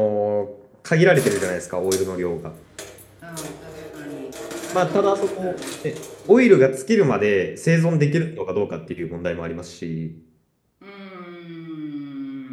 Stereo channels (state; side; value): identical; both; correlation 1.00